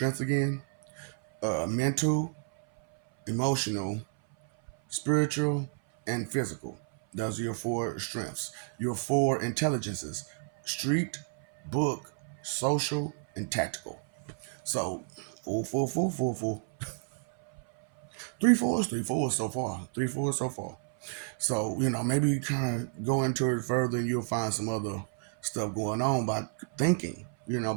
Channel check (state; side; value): silent; left; 57 dB below the other